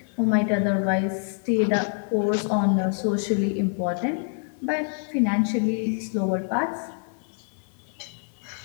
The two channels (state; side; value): silent; right; 57 dB below the other